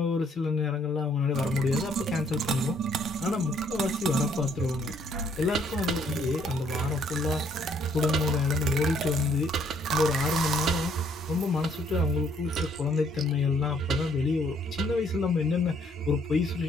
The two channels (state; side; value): normal; both; correlation 0.66